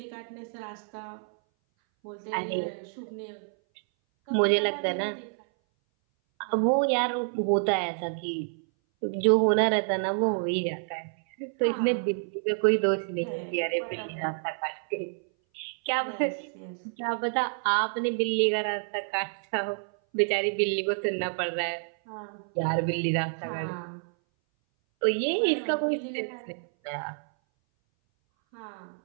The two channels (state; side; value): silent; left; 58 dB below the other